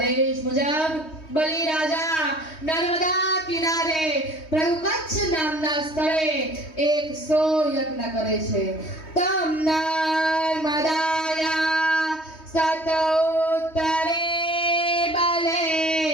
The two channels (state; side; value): late; right; 3.2 ms